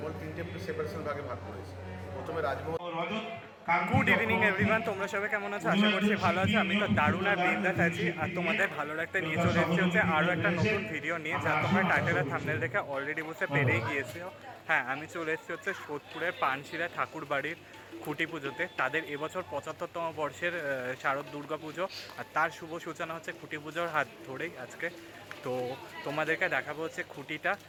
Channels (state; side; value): identical; both; correlation 1.00